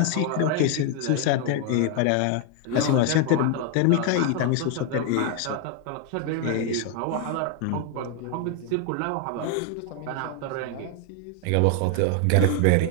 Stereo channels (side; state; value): both; different; correlation 0.01